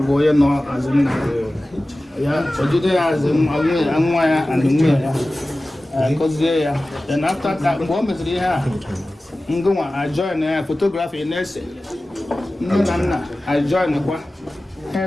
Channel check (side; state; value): both; normal; correlation 0.96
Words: bụ onye nọ azụ nna ya sojide ya azụ nwa ya and nwunye ya gọzie ya then after that mgbe o meziri ihe a ngụnwa ajoin ya fotografi na-ese nne na nna ajoin kwa ha